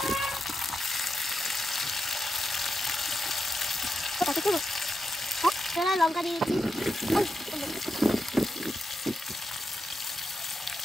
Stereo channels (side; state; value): both; normal; correlation 0.86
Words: লঙ্কা দিয়ে দিচ্ছি,